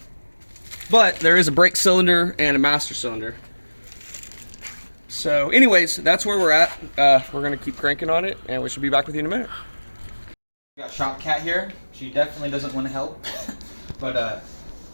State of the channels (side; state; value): both; inverted; correlation -1.00